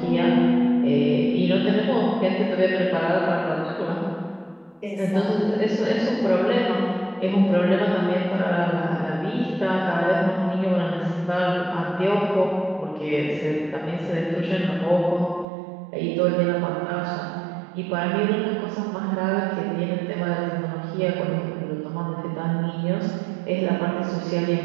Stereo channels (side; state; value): left; drops out; at 15.5 s